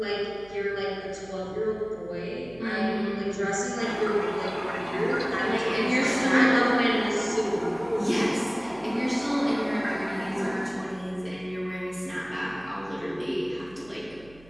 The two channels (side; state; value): right; noise; hum, 24 dB below the sound